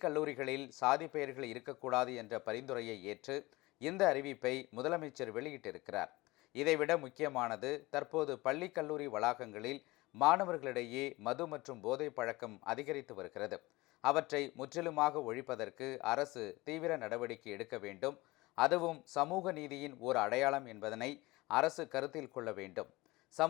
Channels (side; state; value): right; quieter; 21.0 dB